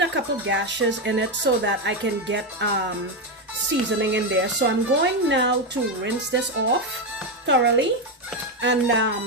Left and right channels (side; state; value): both; normal; correlation 0.09